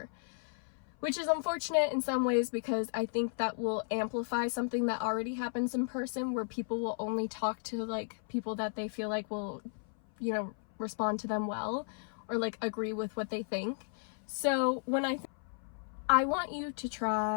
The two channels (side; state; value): right; silent; 55 dB below the other